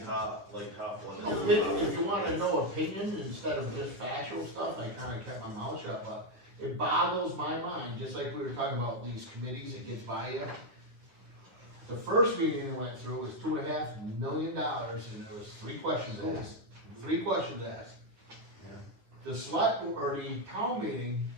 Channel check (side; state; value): left; late; 9.5 ms